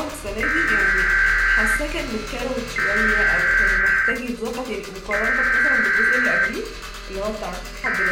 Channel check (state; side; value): identical; both; correlation 1.00